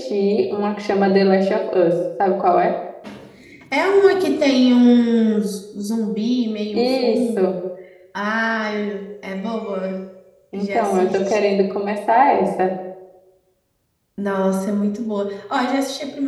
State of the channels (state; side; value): identical; both; correlation 1.00